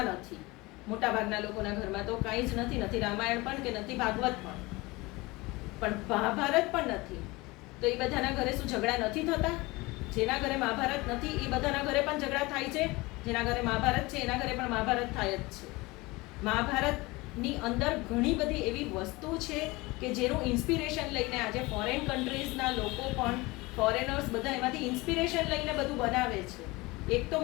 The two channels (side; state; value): right; quieter; 22.7 dB